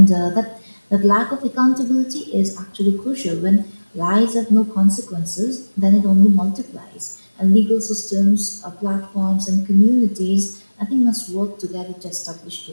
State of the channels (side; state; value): both; inverted; correlation -1.00